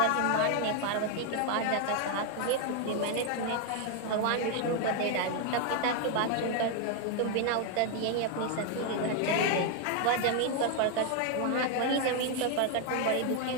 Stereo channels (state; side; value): different; both; correlation 0.00